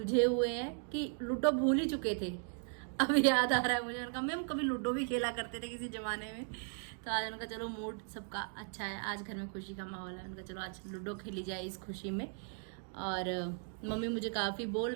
हुए हैं कि लूडो भूल ही चुके थे। अब याद आ रहा है मुझे, उनका मैम कभी लूडो भी खेला करते थे किसी जमाने में। तो आज उनका चलो मूड सबका अच्छा है, आज घर में खुशी का माहौल है। उनका चलो आज लूडो खेली जाए इस खुशी में। और मम्मी मुझे काफ़ी बोल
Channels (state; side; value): silent; left; 53 dB below the other